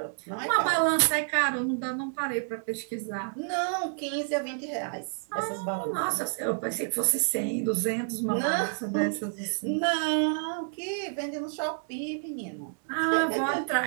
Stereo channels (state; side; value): silent; left; digital silence